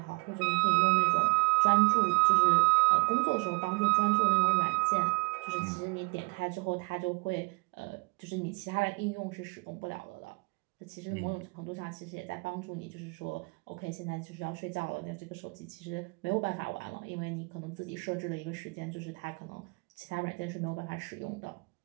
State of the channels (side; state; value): left; quieter; 31.7 dB